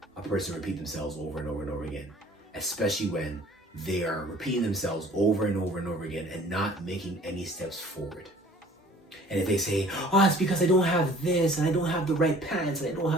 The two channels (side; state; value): both; normal; correlation 0.51